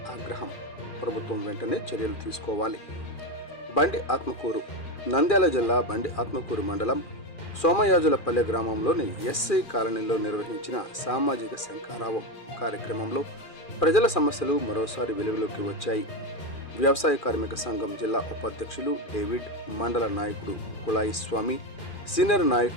ఆగ్రహం. ప్రభుత్వం వెంటనే చర్యలు తీసుకోవాలి. బండి ఆత్మకూరు. నంద్యాల జిల్లా బండి ఆత్మకూరు మండలం సోమయాజులపల్లె గ్రామంలోని ఎస్సీ కాలనీలో నిర్వహించిన సామాజిక శంఖారావం కార్యక్రమంలో ప్రజల సమస్యలు మరోసారి వెలుగులోకి వచ్చాయి. వ్యవసాయ కార్మిక సంఘం జిల్లా ఉపాధ్యక్షులు డేవిడ్, మండల నాయకుడు కుళాయి స్వామి, సీనియర్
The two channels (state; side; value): late; right; 2.4 ms